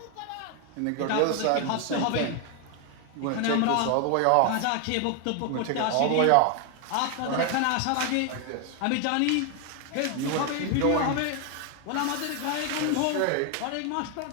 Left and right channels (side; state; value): both; different; correlation 0.00